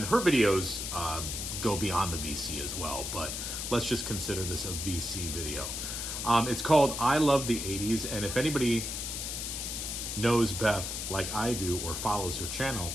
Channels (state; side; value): noise; left; hiss, 4 dB below the sound